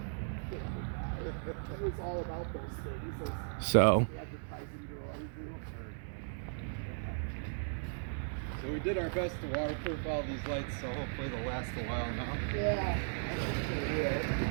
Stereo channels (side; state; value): left; silent; 53 dB below the other